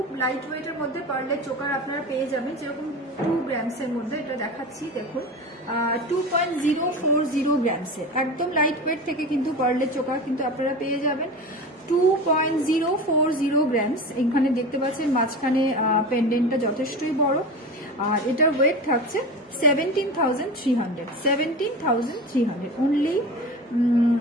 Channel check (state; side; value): normal; both; correlation 0.30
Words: লাইট ওয়েটের মধ্যে পার্লের চোকার আপনারা পেয়ে যাবেন, যেরকম 2 গ্রামসের মধ্যে। এটা দেখাচ্ছি, দেখুন, 2.040 গ্রামসের একদম লাইট ওয়েট থেকে কিন্তু পার্লের চোকার কিন্তু আপনারা পেয়ে যাবেন 2.040 গ্রামস। এখানে দেখতে পাচ্ছেন মাঝখানে পেন্ডেন্টটা যথেষ্টই বড়, আর এটার ওয়েট থাকছে 17,300, 17,300, অনলি